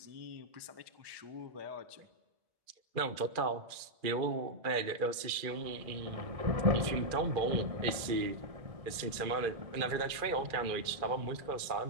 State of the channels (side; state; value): left; late; 2.4 ms